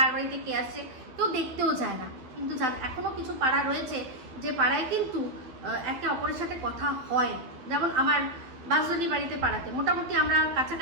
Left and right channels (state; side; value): late; left; 12 ms